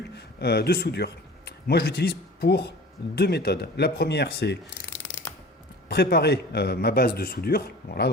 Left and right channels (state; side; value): normal; both; correlation 0.41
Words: de soudure. Moi je l'utilise pour deux méthodes. La première c'est préparer ma base de soudure, voilà,